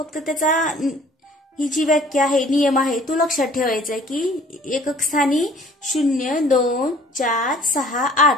त्याचा ही जी व्याख्या आहे, नियम आहे तो लक्षात ठेवायचा आहे की एकक स्थानी 0, 2, 4, 6, 8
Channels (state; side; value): normal; both; correlation 0.53